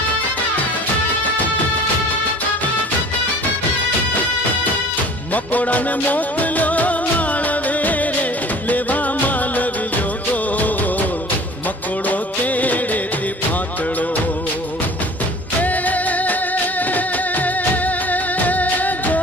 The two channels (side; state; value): both; normal; correlation 0.45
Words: मकोड़ा ने मोकलो मालवे रे लेवा मालवियो गोर, मकोड़ो तेड़े थी फातड़ो